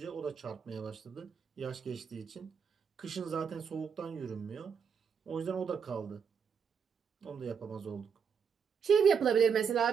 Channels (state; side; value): quieter; left; 6.6 dB